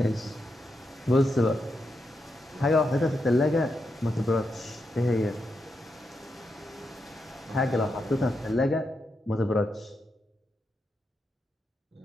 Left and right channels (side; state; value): both; normal; correlation 0.84